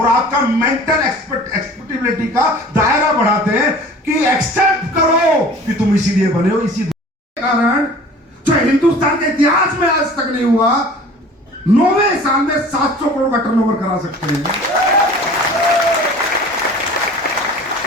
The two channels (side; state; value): both; normal; correlation 0.45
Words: आपका मेंटल एक्सपेक्टेबिलिटी का दायरा बढ़ाते हैं कि एक्सेप्ट करो कि तुम इसीलिए बने हो। इसी कारण जो हिंदुस्तान के इतिहास में आज तक नहीं हुआ, 9वें साल में 700 करोड़ का टर्नओवर करा सकते हैं,